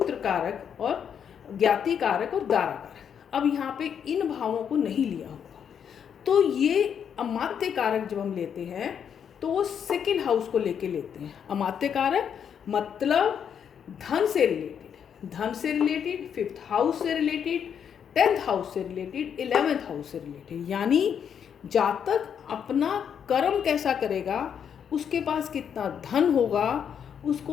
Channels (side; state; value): right; quieter; 8.0 dB